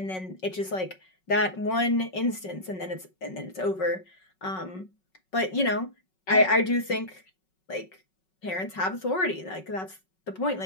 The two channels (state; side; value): late; right; 5.4 ms